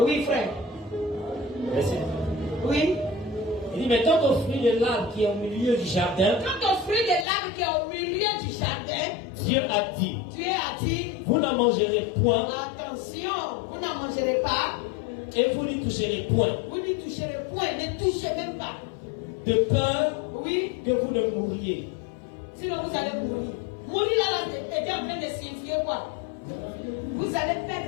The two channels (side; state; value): right; drops out; at 7.2 s